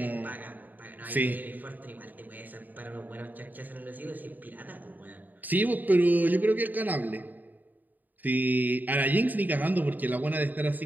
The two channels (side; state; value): left; late; 0.085 ms